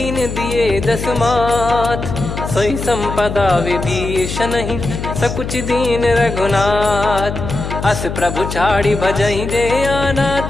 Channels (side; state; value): left; noise; hum, 6 dB below the sound